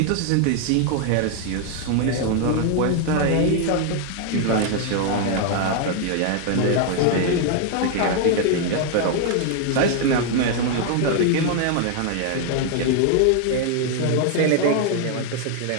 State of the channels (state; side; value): different; both; correlation 0.00